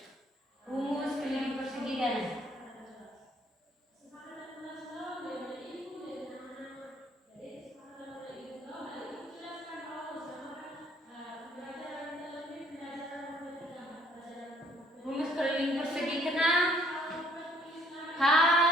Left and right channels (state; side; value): normal; both; correlation 0.62